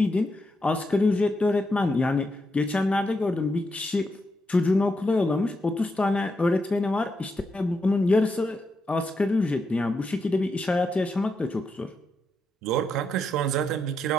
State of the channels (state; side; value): normal; both; correlation 0.83